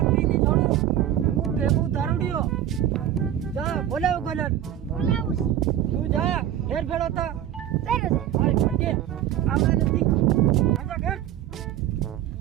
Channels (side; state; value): left; quieter; 11.3 dB